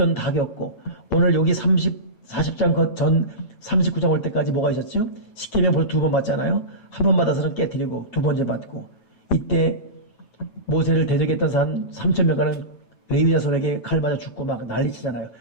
다 겪고 오늘 여기 40장 전 39장 올 때까지 뭐가 있었죠? 십계명 벌써 2번 맞잖아요. 한 번 받아서는 깨뜨리고 2번째 받고 이때 모세를 대적했던 산 3,000명가는 레위 자손에게 칼 맞아 죽고 막 난리치잖아요.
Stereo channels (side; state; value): right; late; 9.3 ms